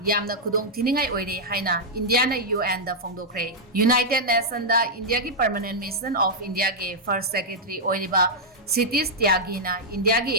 yamna khudong thiningai oire haina India na UN da phongdokre. United Nations da India ki Permanent Mission of India ke First Secretary oiriba Cities Tyagi na India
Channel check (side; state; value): both; normal; correlation -0.06